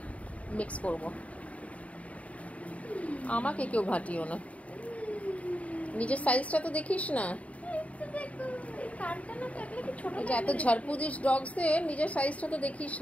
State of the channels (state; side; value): late; right; 0.067 ms